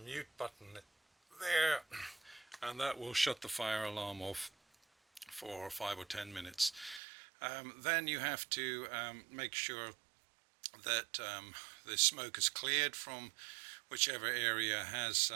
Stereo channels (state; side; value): drops out; left; at 7.0 s